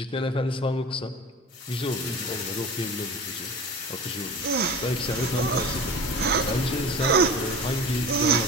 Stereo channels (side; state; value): both; normal; correlation 0.36